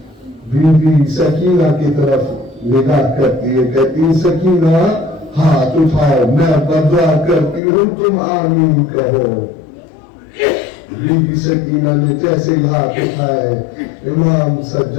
بیوی سکینہ کی طرف نگاہ کرتی ہے، کہتی سکینہ ہاتھ اٹھاؤ، میں بدعا کرتی ہوں تم آمین کہو. بیوی سکینہ نے جیسے ہی ہاتھ اٹھائے امام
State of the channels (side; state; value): right; drops out; at 7.6 s